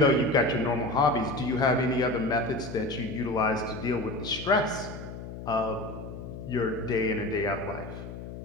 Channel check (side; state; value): left; noise; hum, 10 dB below the sound